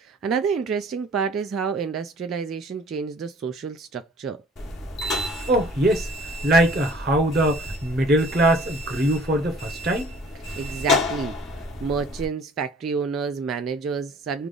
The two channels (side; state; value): both; normal; correlation 0.51